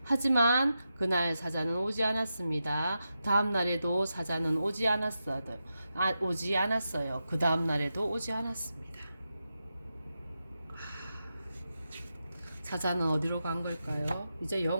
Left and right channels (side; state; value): both; inverted; correlation -0.89